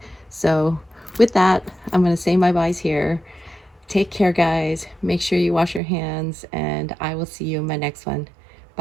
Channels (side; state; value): left; drops out; at 5.8 s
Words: So with that, I'm going to say my byes here. Take care, guys. Make sure you wash your hands, and I will see you in my next one.